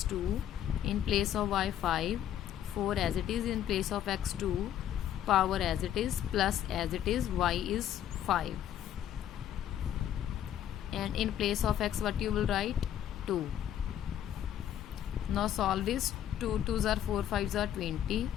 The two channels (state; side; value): quieter; right; 10.7 dB